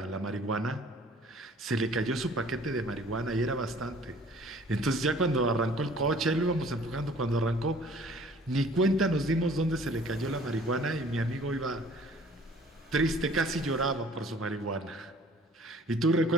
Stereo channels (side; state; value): both; normal; correlation 0.53